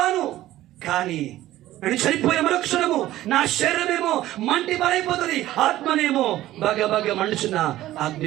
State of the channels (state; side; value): quieter; left; 14.8 dB